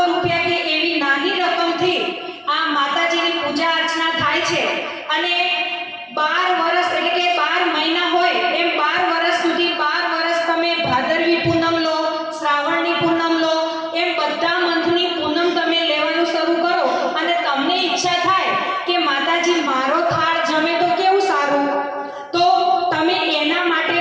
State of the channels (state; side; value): identical; both; correlation 1.00